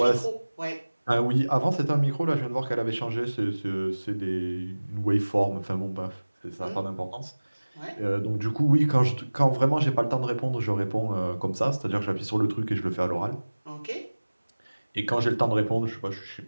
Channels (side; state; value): both; inverted; correlation -1.00